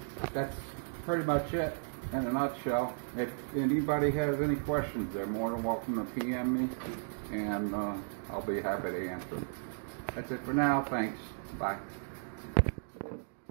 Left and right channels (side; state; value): left; silent; digital silence